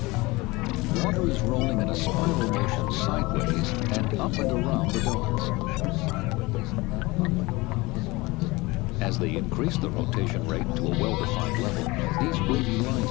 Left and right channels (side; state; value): right; quieter; 22.6 dB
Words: Water is rolling in a spiral motion sideways and up and around the donuts. As they increase the rotation rate to a well-defined level, these wavy